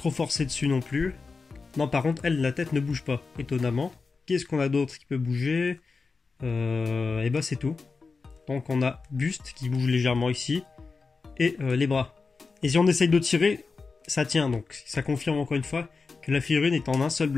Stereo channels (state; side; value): quieter; right; 4.4 dB